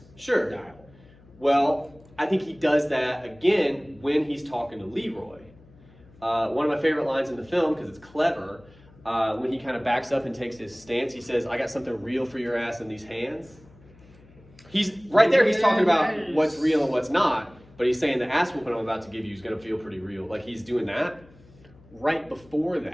style. Well, I think he does that again when he's talking to Leroy. One of my favorite lines in the film, because it's clever, when he kind of backs up and takes his stance, he says, I got something real for your ass in these hands. He's right there, he's talking about what's real and what's not, but he's saying the ass whooping I'm about to give you is going to feel pretty real. Like he's doing that. Right before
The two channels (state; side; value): noise; left; hum, 25 dB below the sound